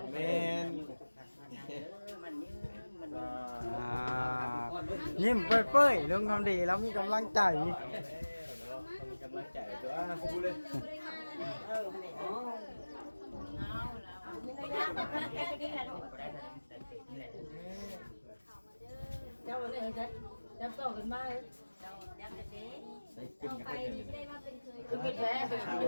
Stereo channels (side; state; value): both; inverted; correlation -1.00